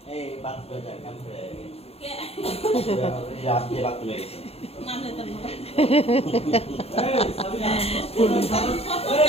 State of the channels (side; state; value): right; late; 0.29 ms